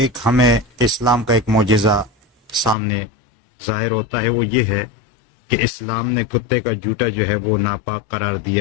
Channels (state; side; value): drops out; right; at 2.8 s